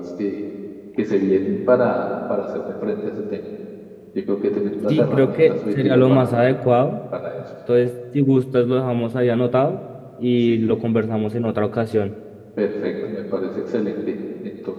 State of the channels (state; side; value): identical; both; correlation 1.00